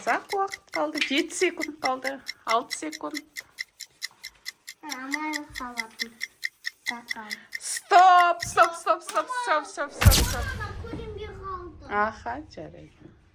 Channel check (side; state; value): both; identical; correlation 1.00